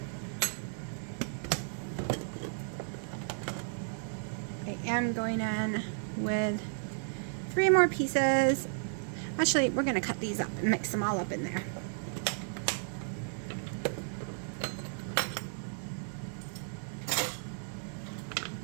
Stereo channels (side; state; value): left; silent; digital silence